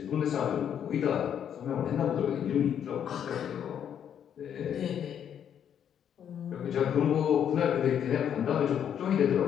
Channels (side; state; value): right; quieter; 9.0 dB